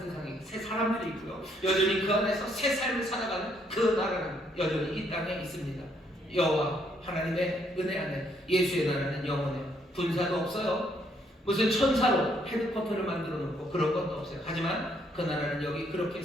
새 사람들이 있고요. 여전히 그 안에서 새 삶을 살아가는 그 나라는 여전히 이 땅에 있습니다. 여호와 하나님의 은혜 안에 예수의 나라는 영원해요. 군사도 없어요. 무슨 천사로 헤드쿼터를 만들어 놓고 그런 것도 없어요. 하지만 그 나라는 여기 그렇게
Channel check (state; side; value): normal; both; correlation 0.70